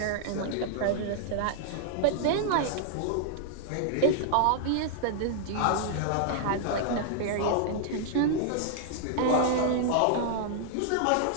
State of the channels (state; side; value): different; both; correlation -0.01